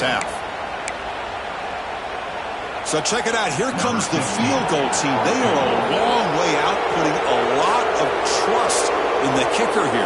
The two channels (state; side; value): identical; both; correlation 1.00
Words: half. So check it out. Here comes the field goal team. They are a long way out, putting a lot of trust in the kicker